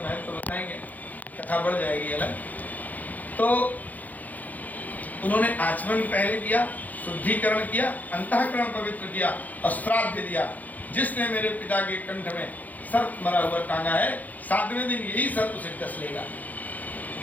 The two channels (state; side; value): late; right; 0.080 ms